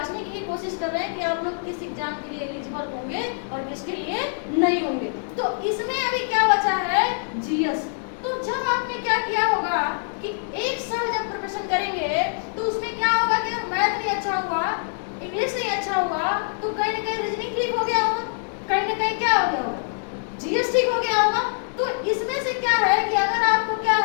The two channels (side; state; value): right; silent; digital silence